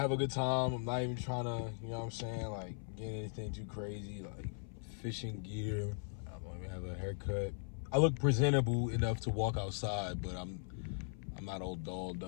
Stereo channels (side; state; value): right; silent; 52 dB below the other